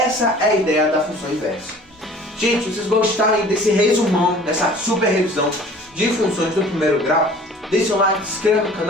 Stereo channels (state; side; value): normal; both; correlation 0.48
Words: é a ideia da função inversa. Gente, se vocês gostaram desse resumão, dessa super revisão de funções do primeiro grau, deixa o like, se inscreva no